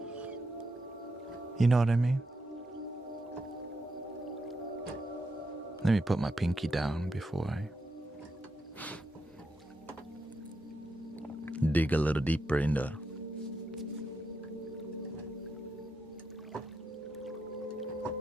You know what I mean? Let me put my pinky down before I dig a little deeper in the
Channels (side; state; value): both; normal; correlation 0.84